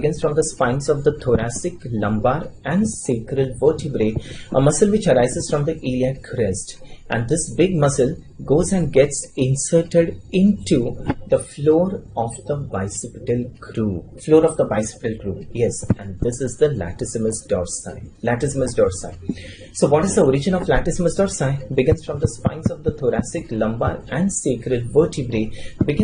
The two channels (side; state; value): both; identical; correlation 1.00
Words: from the spines of the thoracic, lumbar, and sacral vertebrae. A muscle which arises from the iliac crest. And this big muscle goes and gets inserted into the floor of the bicipital groove. Yes, and this is the latissimus dorsi. So what is the origin of latissimus dorsi? Begins from the spines of the thoracic, lumbar, and sacral vertebrae.